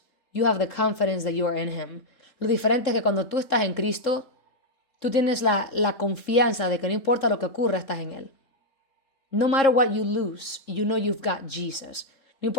you have the confidence that you are in Him. Lo diferente es que cuando tú estás en Cristo, tú tienes la confianza de que no importa lo que ocurra, estás en Él. No matter what you lose, you know you've got Jesus. No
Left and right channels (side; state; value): right; late; 3.7 ms